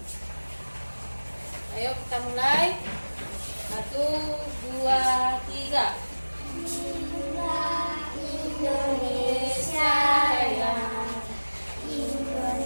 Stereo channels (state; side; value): inverted; both; correlation -1.00